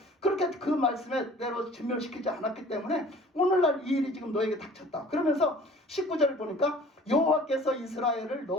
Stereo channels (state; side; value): normal; both; correlation 0.48